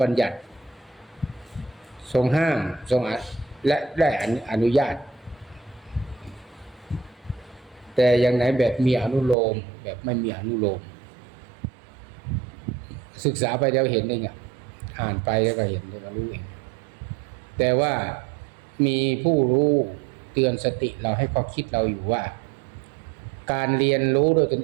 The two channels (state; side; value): drops out; left; at 9.3 s